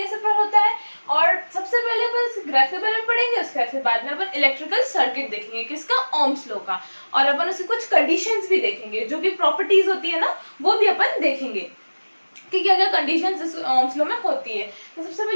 होता है, और सबसे पहले अपन इस ग्राफ के बारे में पढ़ेंगे। उसके बाद में अपन इलेक्ट्रिकल सर्किट देखेंगे किसका, ओम्स लॉ का, और अपन उसकी कुछ कंडीशंस भी देखेंगे, जो भी प्रॉपर्टीज होती है ना वो भी अपन देखेंगे कि क्या क्या कंडीशंस इस ओम्स लॉ में होती है। तो सबसे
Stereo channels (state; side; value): inverted; both; correlation -1.00